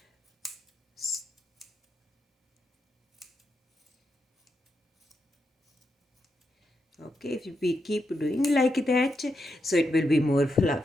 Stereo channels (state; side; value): normal; both; correlation 0.84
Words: Okay, if we keep doing like that, so it will be more